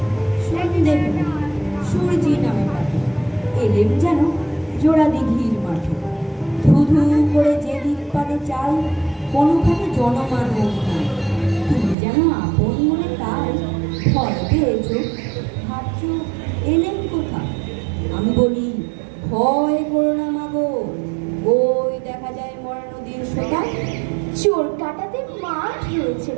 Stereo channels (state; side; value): drops out; left; at 12.0 s